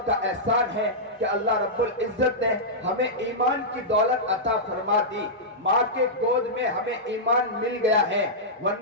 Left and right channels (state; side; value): normal; both; correlation -0.11